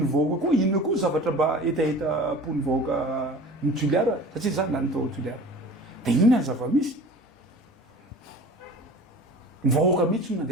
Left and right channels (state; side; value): normal; both; correlation 0.40